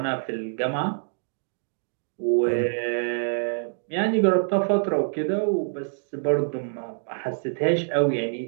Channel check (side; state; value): left; silent; digital silence